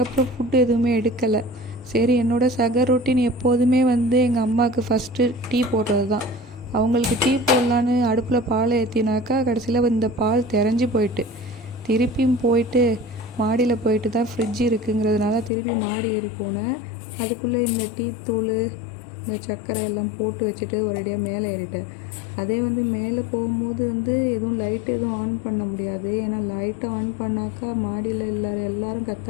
ஃபுட்டு எதுவுமே எடுக்கலை. சரி, என்னோடய சகர் ரொட்டீன் எப்போதுமே எங்கள் அம்மாவுக்கு ஃபஸ்ட்டு டீ போடுறது தான். அவங்களுக்கு டீ போடலான்னு அடுப்பில் பால் ஏற்றினாக்கா கடைசியில் இந்த பால் திரஞ்சி போயிட்டு, திருப்பியும் போயிட்டு மாடியில் போயிட்டு தான் ஃப்ரிட்ஜ் இருக்குங்கிறதுனால திருப்பி மாடி ஏறி போனேன். அதுக்குள்ளே இந்த டீ தூள், இந்த சர்க்கரை எல்லாம் போட்டு வச்சுட்டு ஒரேடியாக மேலே ஏறிட்டேன். அதே மேலே போகும்போது எதுவும் லைட் எதுவும் ஆன் பண்ண முடியாது. ஏன்னா லைட்டை ஆன் பண்ணாக்கா மாடியில் எல்லோரும்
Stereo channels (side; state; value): right; drops out; at 15.5 s